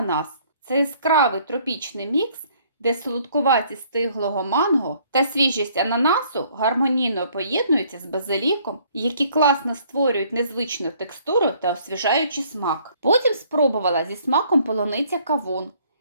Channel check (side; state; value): both; inverted; correlation -0.61